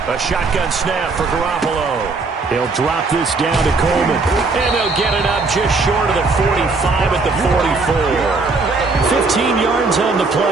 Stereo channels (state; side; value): quieter; left; 3.9 dB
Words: A shotgun snap for Garoppolo. He'll drop this down to Coleman. And they'll get it up just short of the 45 at the 44. 15 yards on the